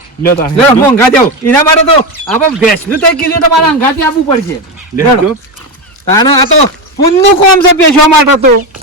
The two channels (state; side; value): normal; both; correlation 0.14